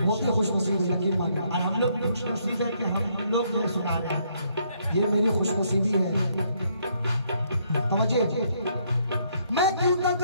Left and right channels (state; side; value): inverted; both; correlation -0.70